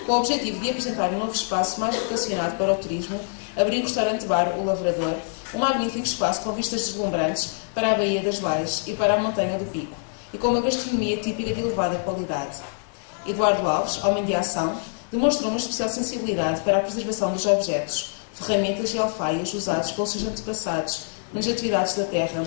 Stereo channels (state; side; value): silent; right; digital silence